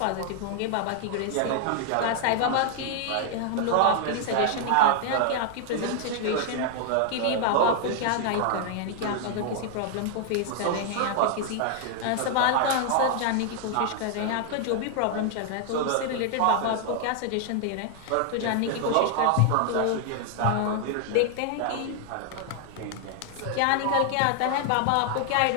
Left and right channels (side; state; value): both; different; correlation 0.00